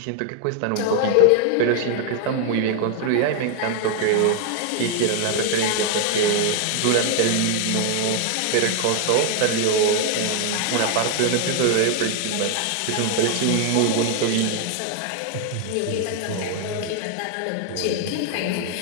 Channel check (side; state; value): both; different; correlation 0.00